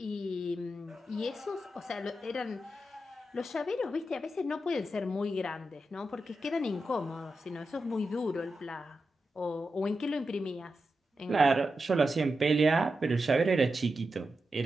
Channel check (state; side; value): normal; both; correlation 0.89